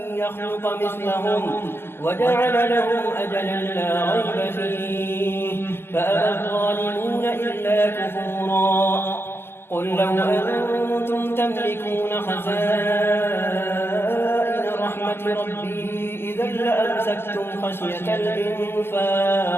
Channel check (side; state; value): right; late; 0.11 ms